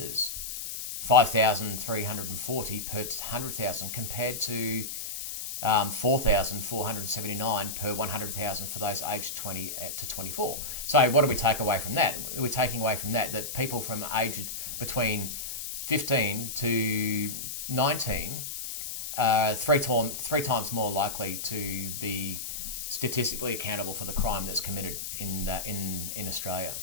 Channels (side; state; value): left; noise; hiss, 6 dB below the sound